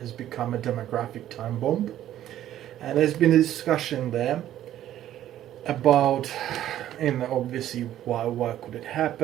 become a demographic time bomb. And there's been a discussion there about obviously why could it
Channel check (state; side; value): quieter; left; 12.3 dB